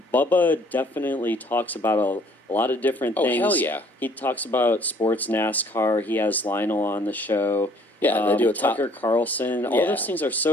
Bubba definitely talks about a lot of different things. Oh, hell yeah. He talks about sports, NASCAR. He has Lionel on the show. Yeah, they do a Tucker Carlson. All those things are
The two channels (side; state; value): both; normal; correlation 0.59